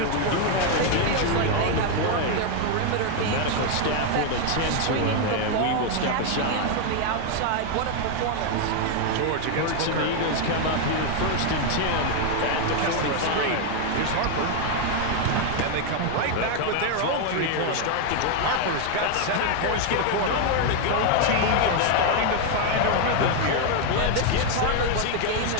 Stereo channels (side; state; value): both; different; correlation 0.01